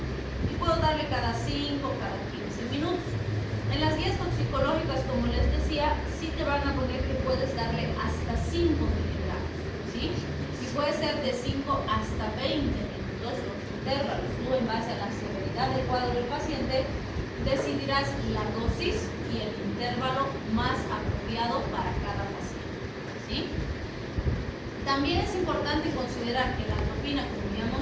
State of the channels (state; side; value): identical; both; correlation 1.00